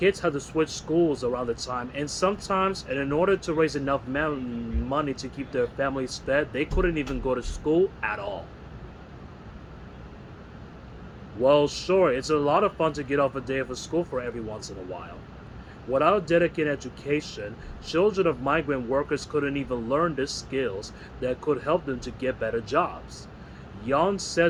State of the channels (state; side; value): identical; both; correlation 1.00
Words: had to switch schools around the time, and sometimes, and in order to raise enough money to keep their families fed, they couldn't even go to school at all. Well, sure, it's a lot of fun to get off a day of school for every once in a while. Without dedicated education, children of migrant workers couldn't even learn the skills that could help them to get better jobs. Young